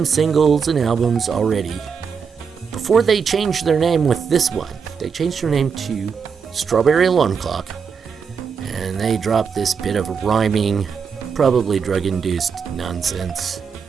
singles and albums already. Before they changed their name with this one, they changed their name to Strawberry Alarm Clock, and they dropped this bit of rhyming, probably drug-induced nonsense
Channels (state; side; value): quieter; left; 6.2 dB